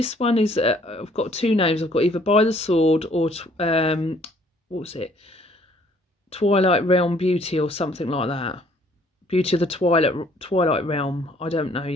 one is, I've got two names. I've got either By the Sword or what was it, Twilight Realm Beauty or something like that. Beauty of the Twilight Realm. I don't know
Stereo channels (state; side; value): normal; both; correlation 0.61